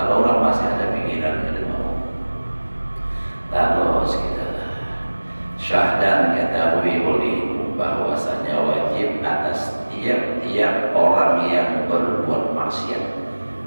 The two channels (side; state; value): both; inverted; correlation -1.00